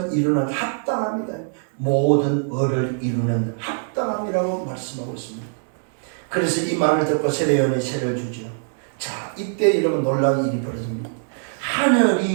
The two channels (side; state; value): left; silent; digital silence